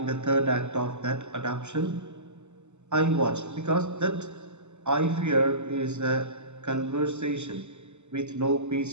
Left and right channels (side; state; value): left; late; 0.83 ms